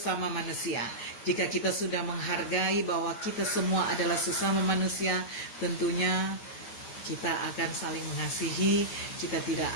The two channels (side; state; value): right; late; 8.4 ms